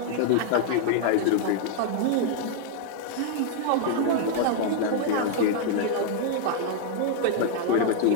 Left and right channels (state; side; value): different; both; correlation -0.01